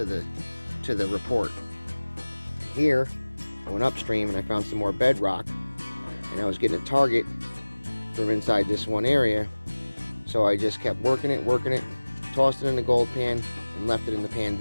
the report. Here, I went upstream and I found some more bedrock, and I was getting a target from inside this one area, so I just kept working it, tossed it in the gold pan and left it in the pan.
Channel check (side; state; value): both; inverted; correlation -1.00